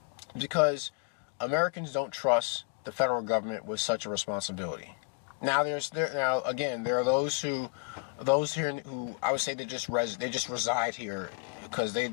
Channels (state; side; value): quieter; right; 36.2 dB